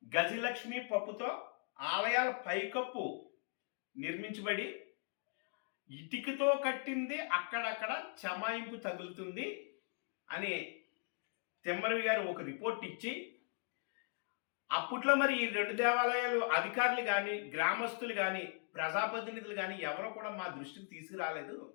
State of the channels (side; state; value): right; silent; 52 dB below the other